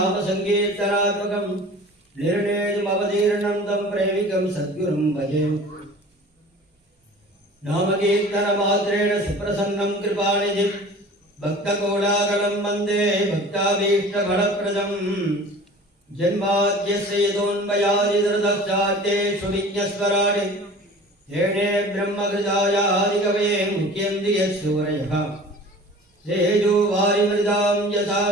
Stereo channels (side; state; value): both; normal; correlation 0.43